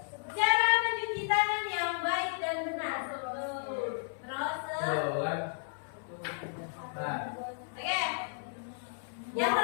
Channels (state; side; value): silent; right; 56 dB below the other